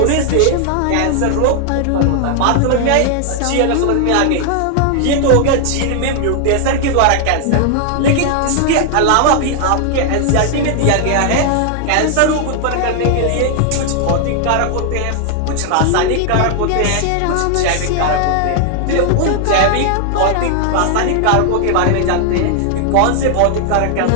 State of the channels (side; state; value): both; different; correlation 0.00